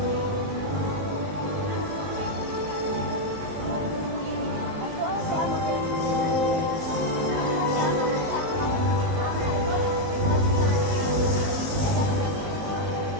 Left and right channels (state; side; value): late; left; 19 ms